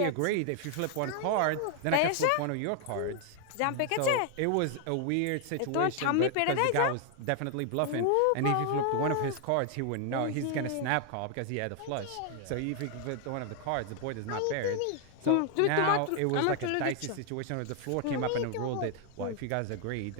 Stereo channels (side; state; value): both; different; correlation 0.00